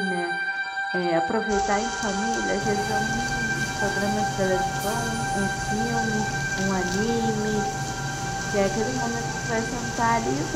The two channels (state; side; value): identical; both; correlation 1.00